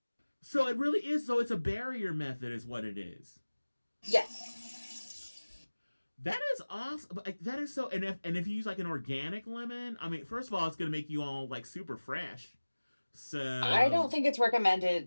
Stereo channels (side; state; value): both; inverted; correlation -1.00